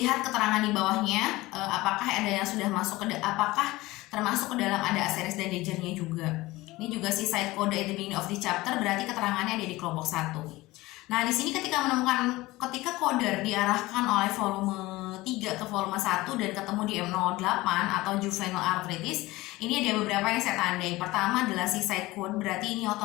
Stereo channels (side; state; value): right; quieter; 19.5 dB